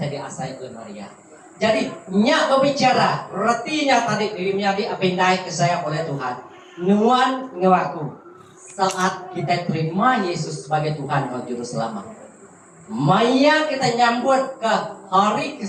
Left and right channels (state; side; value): identical; both; correlation 1.00